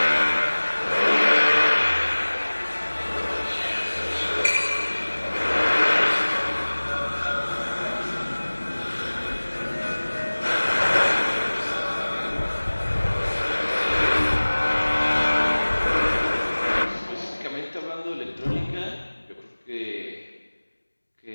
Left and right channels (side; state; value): both; inverted; correlation -1.00